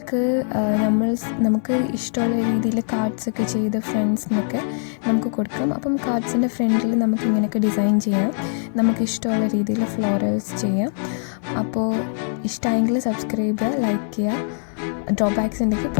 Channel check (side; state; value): right; silent; digital silence